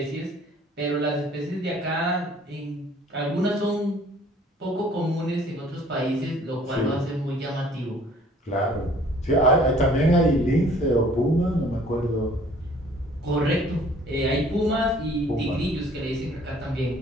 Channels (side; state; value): both; normal; correlation 0.55